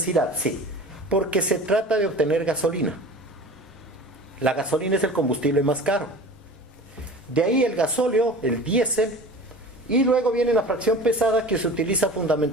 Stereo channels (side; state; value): both; normal; correlation 0.38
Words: sí, porque se trata de obtener gasolina. La gasolina es el combustible más caro. De ahí el gasóleo, el diésel, y luego viene la fracción pesada, que se utiliza